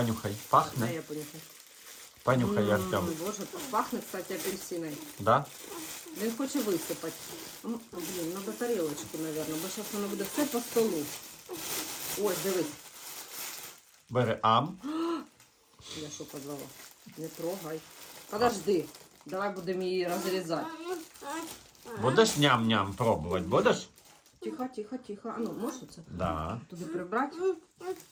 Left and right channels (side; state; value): both; identical; correlation 1.00